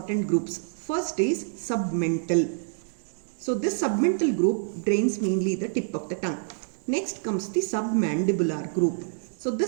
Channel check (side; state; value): left; silent; digital silence